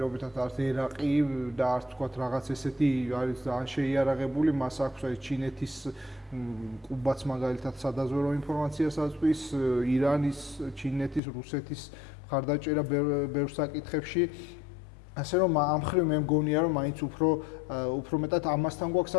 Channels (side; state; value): right; drops out; at 11.2 s